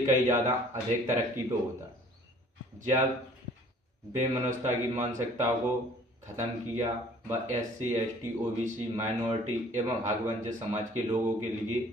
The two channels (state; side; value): normal; both; correlation 0.53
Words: ज़्यादा अधिक तरक्की पे होता। जब बेमनस्ता की मानसिकता को ख़त्म किया, व SC, ST, OBC, माइनॉरिटी एवं हकवंचित समाज के लोगों के लिए